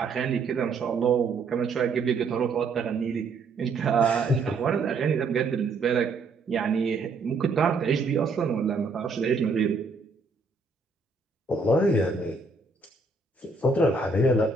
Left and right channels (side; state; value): left; quieter; 3.9 dB